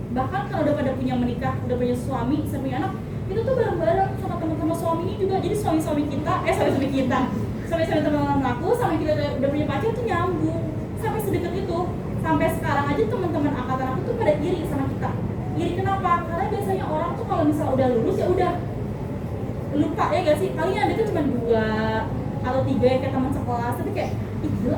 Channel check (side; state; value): both; identical; correlation 1.00